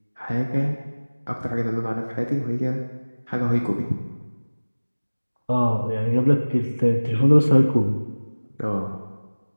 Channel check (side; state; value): both; inverted; correlation -1.00